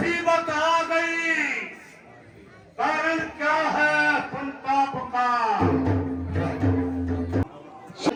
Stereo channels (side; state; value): both; identical; correlation 1.00